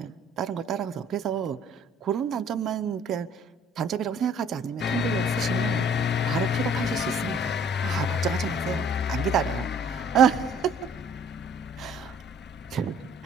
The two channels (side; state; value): both; normal; correlation 0.56